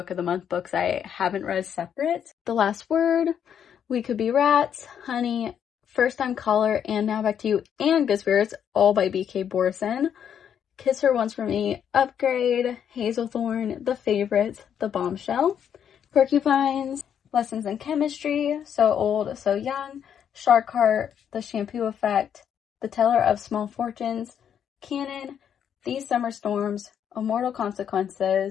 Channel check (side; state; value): right; quieter; 8.6 dB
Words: of the Month books I haven't read separate. The Last Word, We Could Be Rats, Honey, First Time Caller, and Now Back to You, and Good Spirits, all by B.K. Borison. Kiss Her Once for Me, Upgrade, Hazelthorn, The Favorite, The Bombshell, Porcupines, Lessons in Chemistry, So Old, So Young, Shark Heart, The Shampoo Effect, The Teller of Small Fortunes, Canon, These Summer Storms, Immortal